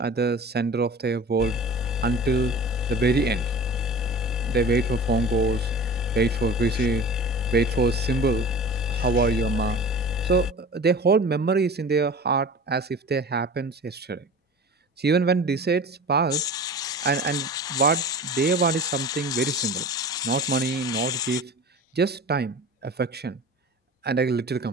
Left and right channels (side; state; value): both; normal; correlation 0.38